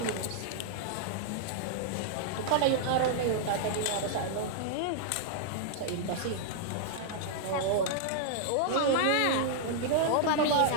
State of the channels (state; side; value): different; both; correlation -0.01